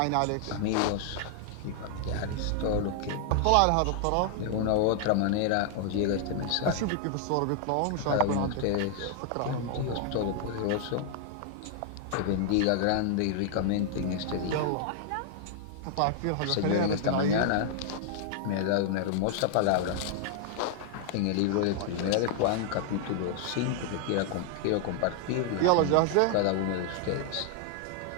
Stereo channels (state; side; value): different; both; correlation 0.00